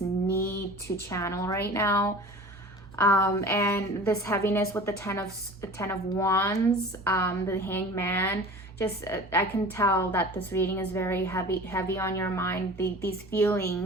to channel right now. And this heaviness with the Ten of Wands, the Hanged Man. Just I can tell that this reading is very heavy on your mind. These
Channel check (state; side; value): normal; both; correlation 0.39